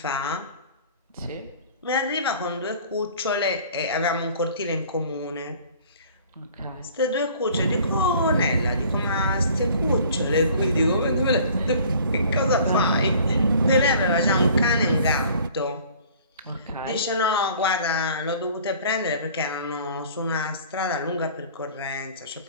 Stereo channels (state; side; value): inverted; both; correlation -0.50